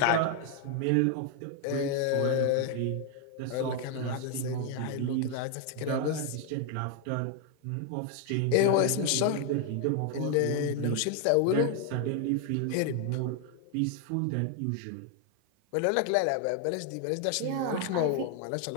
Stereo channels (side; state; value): both; different; correlation 0.01